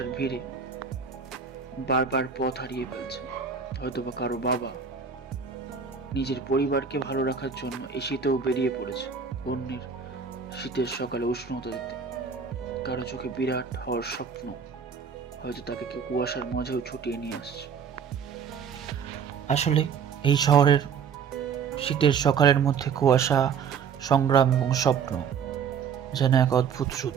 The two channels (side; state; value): left; quieter; 6.6 dB